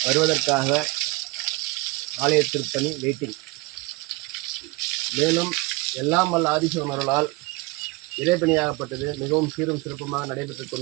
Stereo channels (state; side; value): quieter; left; 24.1 dB